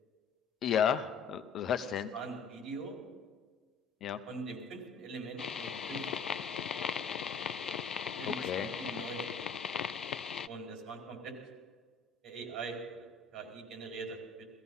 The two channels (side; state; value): right; quieter; 5.2 dB